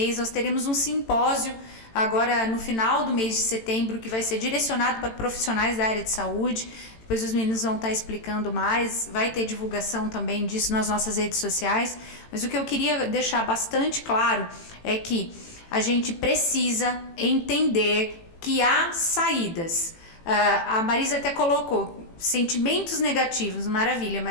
nós teremos um simpósio agora no final do mês de setembro que vai ser direcionado para profissionais da área de saúde. Depois os meninos vão estar explicando mais, vai ter divulgação também disso nas nossas redes sociais. Mas o que eu queria deixar bastante claro é que a gente precisa entender que há saídas. A Marisa até colocou sentimentos negativos, maravilha,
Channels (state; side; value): late; right; 18 ms